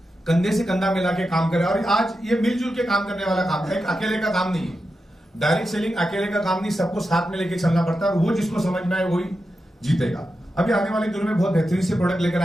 कंधे से कंधा मिला के काम करे। और आज ये मिलजुल के काम करने वाला काम है, एक अकेले का काम नहीं है। डायरेक्ट सेलिंग अकेले का काम नहीं, सबको साथ में लेके चलना पड़ता है, और वो जिसको समझ में आए वही जीतेगा। अभी आने वाले दिनों में बहुत बेहतरीन से प्रोडक्ट लेकर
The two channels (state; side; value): normal; both; correlation 0.89